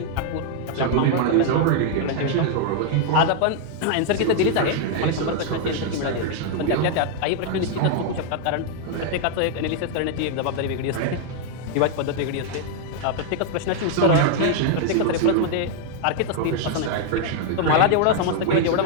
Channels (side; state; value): both; different; correlation 0.00